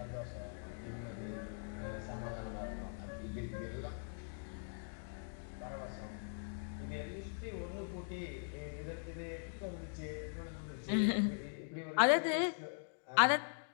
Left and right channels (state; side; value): silent; right; digital silence